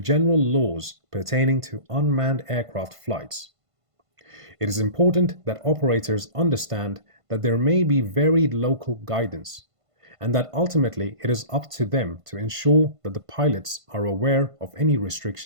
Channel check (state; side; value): late; left; 1.5 ms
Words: laws pertaining to unmanned aircraft flights. It is important that operators understand that there may be varied local guidance, and that ultimately it is up to them to ensure that the pilots are aware of any